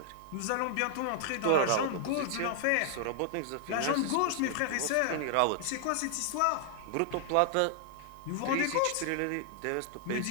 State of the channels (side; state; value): both; different; correlation -0.01